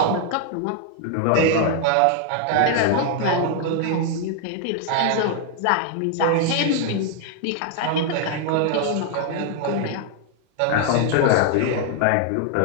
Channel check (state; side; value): different; both; correlation 0.00